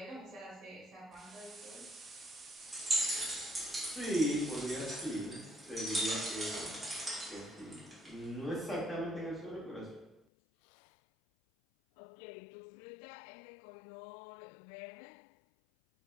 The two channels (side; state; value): right; drops out; at 10.2 s